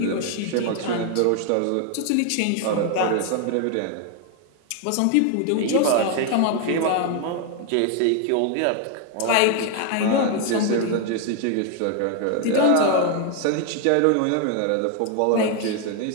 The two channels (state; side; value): different; both; correlation 0.01